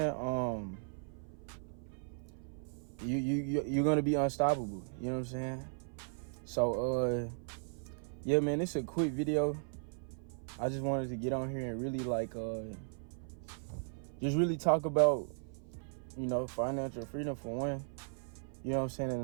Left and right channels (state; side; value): silent; left; 53 dB below the other